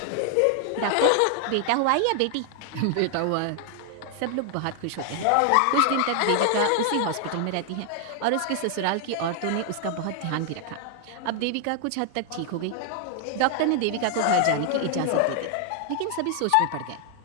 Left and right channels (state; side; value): different; both; correlation 0.00